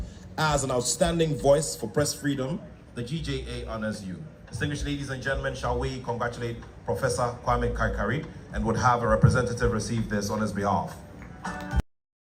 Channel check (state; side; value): identical; both; correlation 1.00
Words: as an outstanding voice for press freedom, the GJA honors you. Distinguished ladies and gentlemen, shall we congratulate Professor Kwame Kaikari and would have a representative receive this on his behalf.